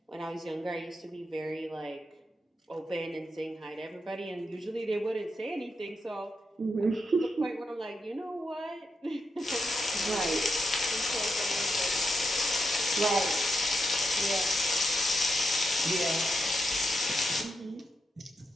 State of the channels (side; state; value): both; normal; correlation 0.84